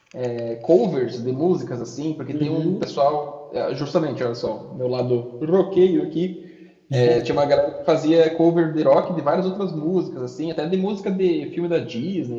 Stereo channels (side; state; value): both; identical; correlation 1.00